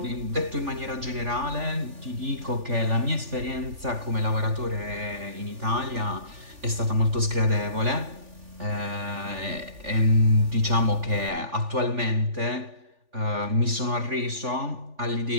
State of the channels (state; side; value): late; left; 3.4 ms